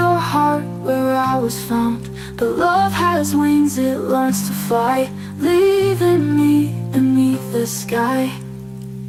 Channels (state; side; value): identical; both; correlation 1.00